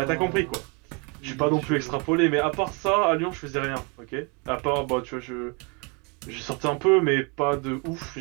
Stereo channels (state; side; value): quieter; left; 32.3 dB